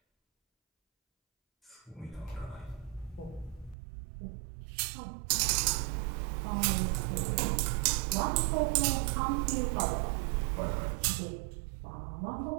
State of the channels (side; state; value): left; drops out; at 3.8 s